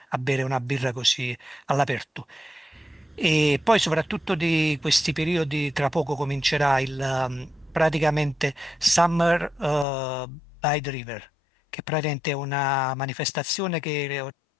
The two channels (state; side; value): drops out; right; at 9.9 s